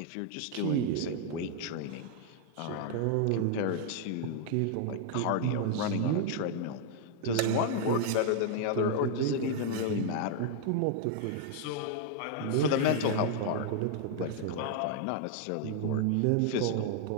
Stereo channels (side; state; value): both; different; correlation 0.00